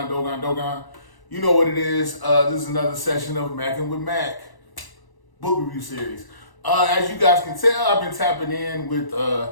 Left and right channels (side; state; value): right; late; 1.0 ms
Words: You know what it is. This is another session of Mackin' with Mac book review series. As you guys can tell, I've been tapping in with